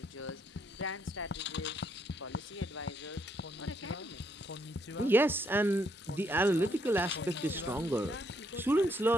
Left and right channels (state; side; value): normal; both; correlation 0.73